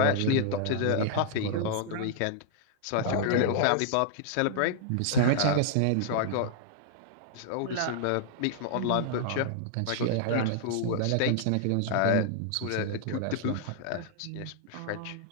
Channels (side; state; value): both; different; correlation -0.01